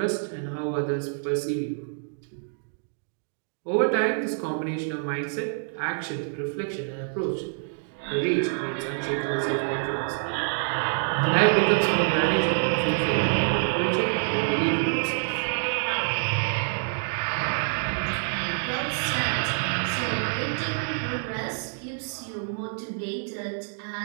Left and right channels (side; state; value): left; silent; digital silence